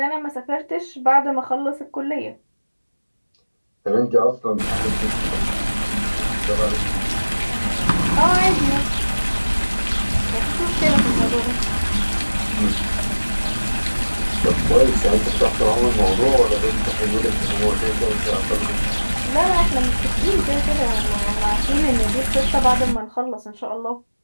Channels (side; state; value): both; inverted; correlation -1.00